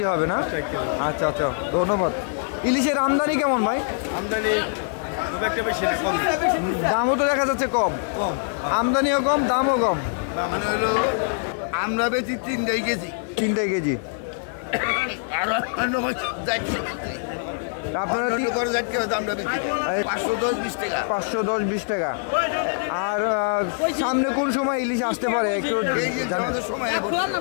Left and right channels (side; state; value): right; silent; digital silence